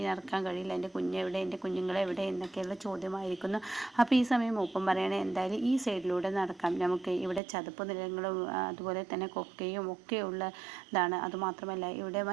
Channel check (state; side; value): drops out; left; at 7.4 s